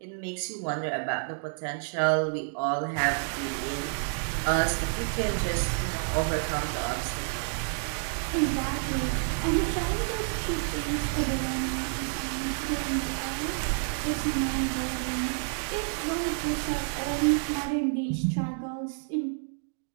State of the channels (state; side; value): silent; left; 58 dB below the other